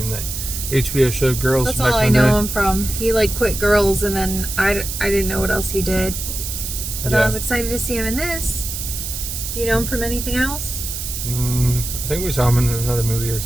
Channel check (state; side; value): noise; right; hiss, 6 dB below the sound